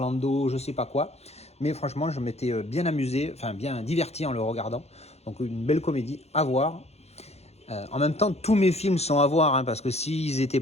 je sais pas quoi. Mais franchement, je m'étais bien amusé, bien diverti en le regardant. Donc une belle comédie à voir. En même temps, tous mes films sont à voir, hein, parce que s'ils n'étaient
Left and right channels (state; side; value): late; right; 0.31 ms